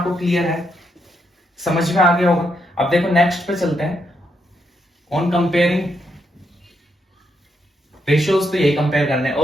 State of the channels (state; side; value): normal; both; correlation 0.79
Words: क्लियर है, समझ में आ गया होगा। अब देखो नेक्स्ट पे चलते हैं, ऑन कंपेयरिंग रेशियोज, तो यही कंपेयर करने हैं।